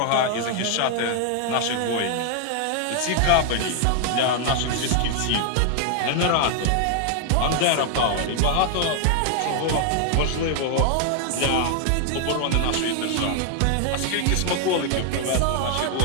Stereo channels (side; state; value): both; different; correlation 0.00